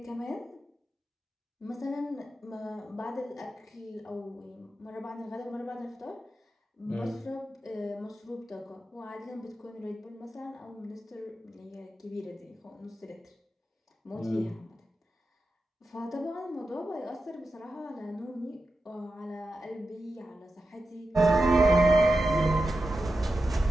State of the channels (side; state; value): both; normal; correlation 0.91